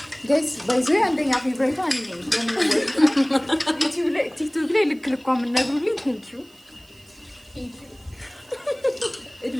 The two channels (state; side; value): noise; right; hiss, 28 dB below the sound